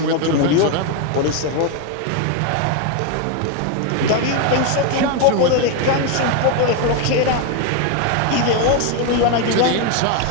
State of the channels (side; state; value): both; different; correlation 0.01